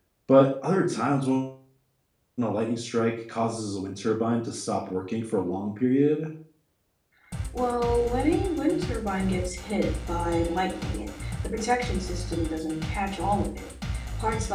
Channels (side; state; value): both; identical; correlation 1.00